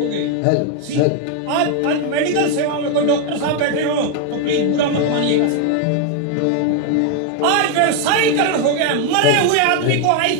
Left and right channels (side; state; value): both; different; correlation 0.01